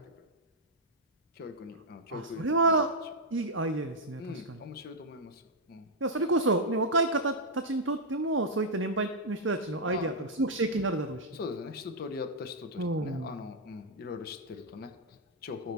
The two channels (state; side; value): normal; both; correlation -0.04